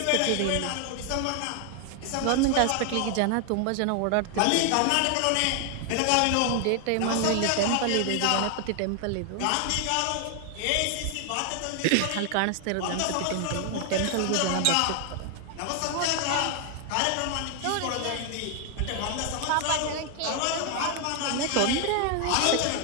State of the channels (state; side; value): different; both; correlation 0.00